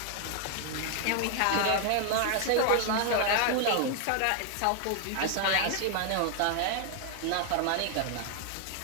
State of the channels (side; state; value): both; different; correlation 0.00